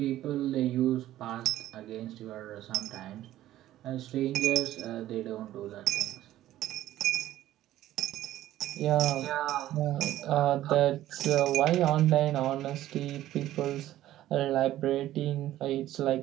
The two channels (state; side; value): quieter; left; 13.9 dB